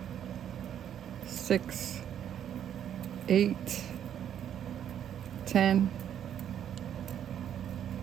6, 8, 10,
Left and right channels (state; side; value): quieter; left; 9.7 dB